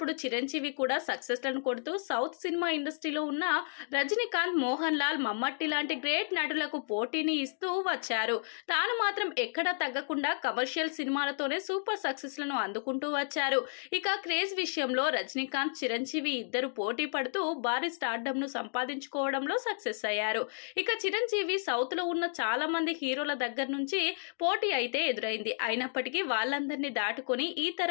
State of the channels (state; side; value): silent; right; digital silence